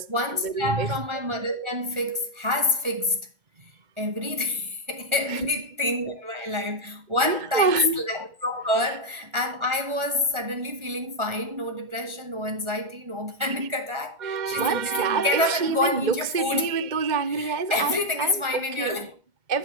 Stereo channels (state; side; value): late; left; 1.4 ms